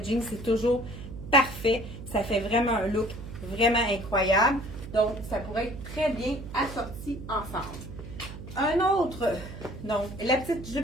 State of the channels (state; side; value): noise; right; hum, 11 dB below the sound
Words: jeans, c'est toujours parfait. Ça fait vraiment un look vraiment incroyable. Donc, ça pourrait être très bien assorti ensemble. Un autre, donc, la petite